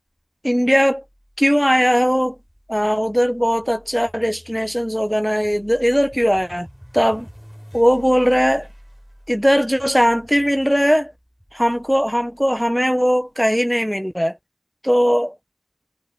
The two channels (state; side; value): identical; both; correlation 1.00